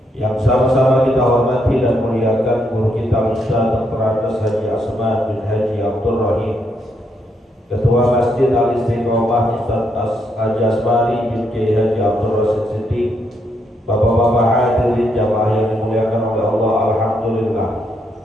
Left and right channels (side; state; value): both; normal; correlation 0.77